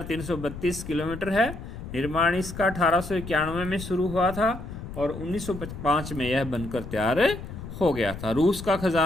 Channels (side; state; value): left; noise; rumble, 10 dB below the sound